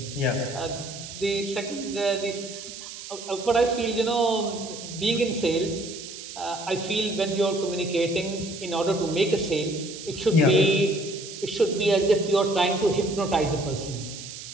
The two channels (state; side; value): noise; right; hiss, 12 dB below the sound